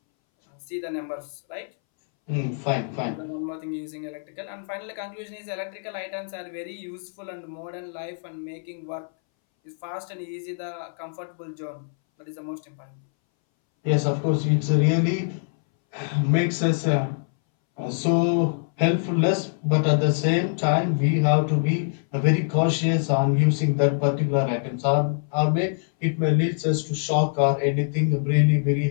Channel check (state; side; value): silent; right; 62 dB below the other